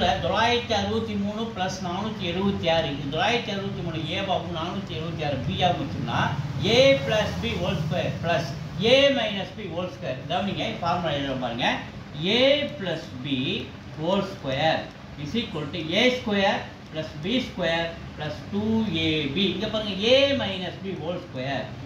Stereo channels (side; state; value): both; identical; correlation 1.00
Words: 963 plus 476 இது 963 ஏவாகவும் 476 பியாகவும் வச்சோம்னா A plus B whole square plus A minus B whole square. கவனிங்க ஃபார்முலா எழுத பாருங்க. A plus B whole square is equal to A square plus B square plus 2ab. இங்கே பாருங்க A minus B whole square